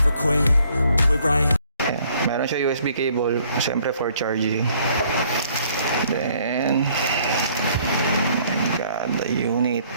quit, do it right. Ayan. Meron siya USB cable, syempre for charging. Then, oh my god, the unit.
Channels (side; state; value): both; inverted; correlation -0.62